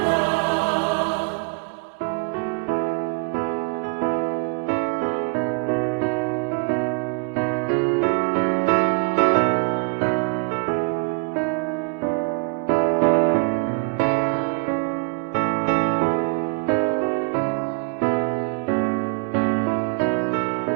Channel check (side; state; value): left; quieter; 37.2 dB